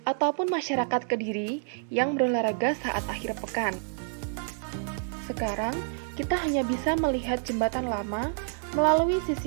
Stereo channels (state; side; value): silent; left; digital silence